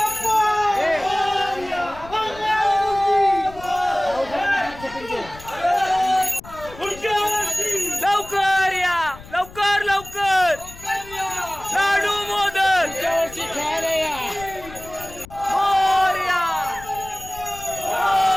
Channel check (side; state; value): left; noise; rumble, 18 dB below the sound